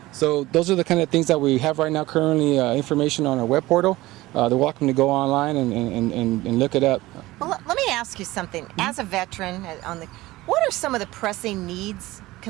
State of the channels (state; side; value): quieter; left; 18.4 dB